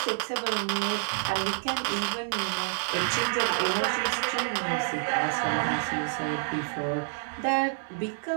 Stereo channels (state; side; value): silent; left; digital silence